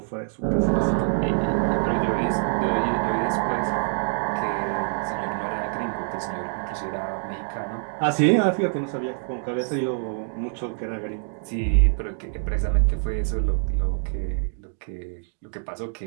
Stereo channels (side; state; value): left; silent; 62 dB below the other